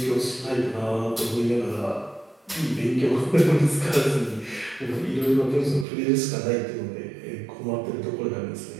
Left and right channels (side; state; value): left; drops out; at 5.9 s